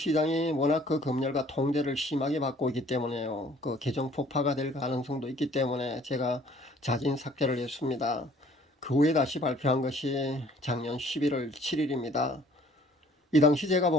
워낙 그 검열과 통제를 심하게 받고 있기 때문에요. 그 계정 폭파가 될 가능성도 있기 때문에 제가 자진 삭제를 했습니다. 그 후에 다시 발표한 것이 작년 11월 7일입니다. 이 당시 제가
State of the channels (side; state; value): both; normal; correlation 0.56